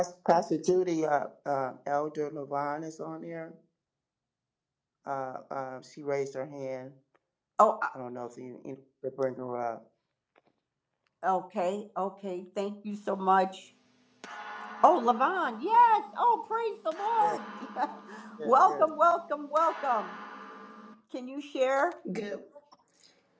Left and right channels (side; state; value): both; identical; correlation 1.00